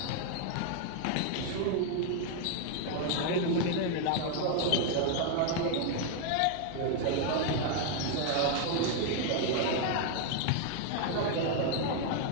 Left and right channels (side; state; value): both; different; correlation 0.00